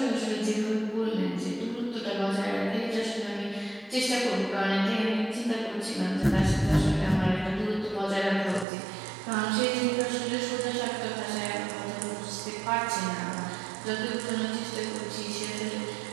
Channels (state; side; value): drops out; left; at 8.7 s